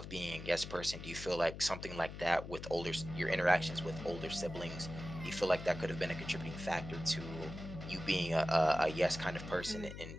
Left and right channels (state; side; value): noise; left; hum, 10 dB below the sound